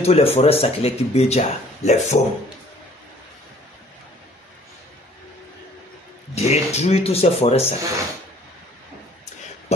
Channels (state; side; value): normal; both; correlation 0.56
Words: toutes les forêts sacrées qui béja, les faunes. Détruire toutes ces forêts sacrées.